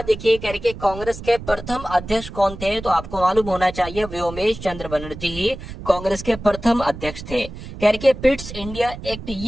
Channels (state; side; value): noise; right; rumble, 12 dB below the sound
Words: देखिए करके कांग्रेस के प्रथम अध्यक्ष कौन थे? तो आपको मालूम होना चाहिए व्योमेश चंद्र बनर्जी ही कांग्रेस के प्रथम अध्यक्ष थे। करके पिट्स इंडिया एक्ट